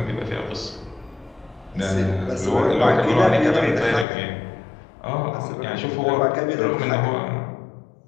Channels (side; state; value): right; drops out; at 4.0 s